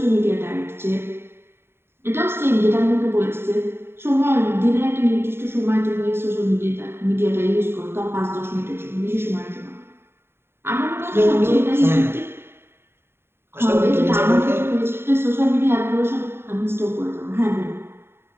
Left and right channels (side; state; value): left; late; 0.11 ms